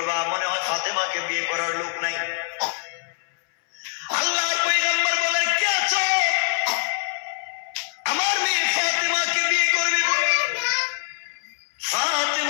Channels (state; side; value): silent; right; 63 dB below the other